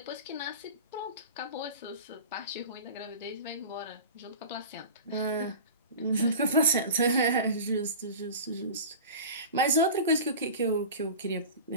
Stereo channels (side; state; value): both; inverted; correlation -0.35